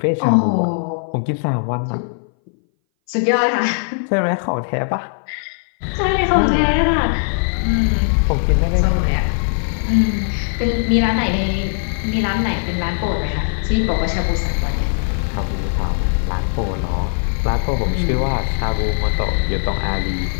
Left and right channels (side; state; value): right; silent; 60 dB below the other